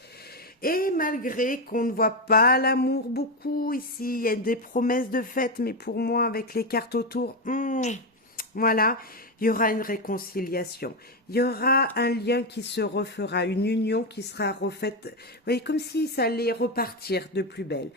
Et malgré qu'on ne voit pas l'amour beaucoup ici, il y a des promesses de fête, mais pour moi, avec les cartes autour, voilà, il y aura une réconciliation. Il y aura un lien qui se refera, une union qui sera refaite. Vous voyez, comme si ça allait repartir de plus belle.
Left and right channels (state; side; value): normal; both; correlation 0.09